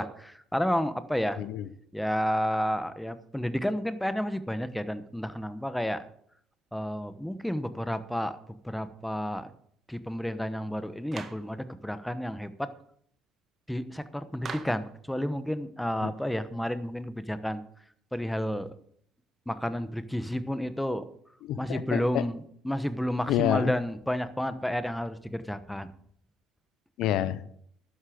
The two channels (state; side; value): normal; both; correlation 0.88